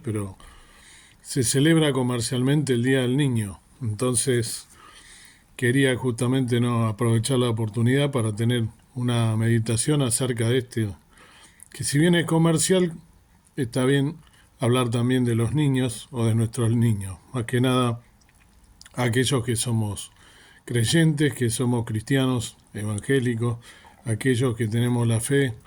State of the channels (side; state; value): both; identical; correlation 1.00